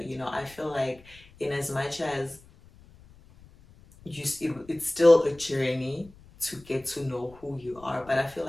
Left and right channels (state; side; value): noise; left; rumble, 24 dB below the sound